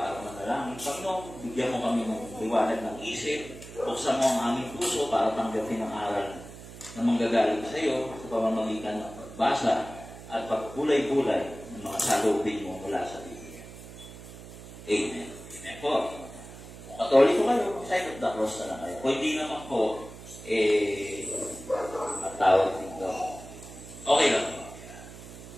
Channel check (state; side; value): noise; right; hum, 15 dB below the sound